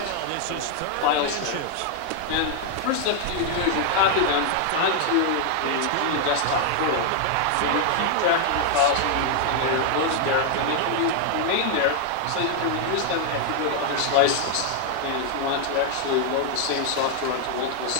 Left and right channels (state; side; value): different; both; correlation 0.00